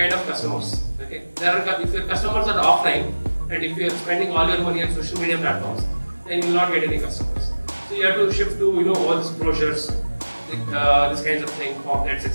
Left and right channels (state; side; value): inverted; both; correlation -1.00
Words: of customers. Okay, if your customers are offline, and if you are spending all your money on social media platforms, then you will not get any customers. So you have to shift to all these brochures, this kinds of thing, pamphlets,